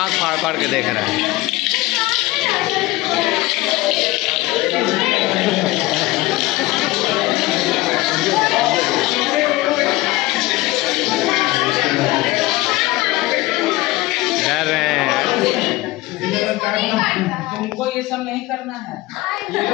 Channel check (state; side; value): quieter; right; 19.5 dB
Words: फाड़ फाड़ के देख रहा है। डर रहे हैं। तुमको ये सब नहीं करना है। ये